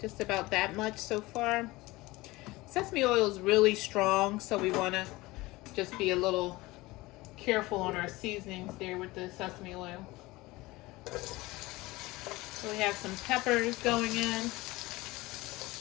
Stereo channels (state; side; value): quieter; right; 20.6 dB